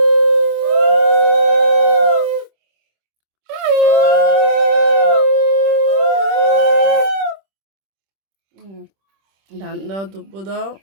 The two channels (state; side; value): late; left; 26 ms